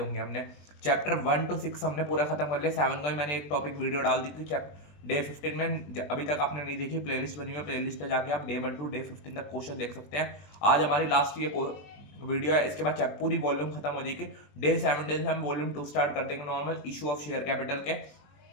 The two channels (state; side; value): late; right; 20 ms